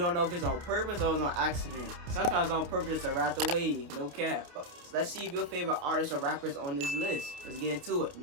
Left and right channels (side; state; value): left; late; 28 ms